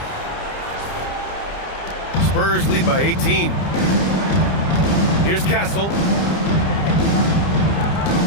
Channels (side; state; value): right; late; 30 ms